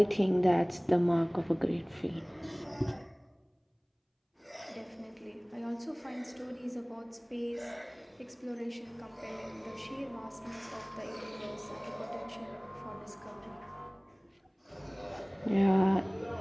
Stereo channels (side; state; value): both; identical; correlation 1.00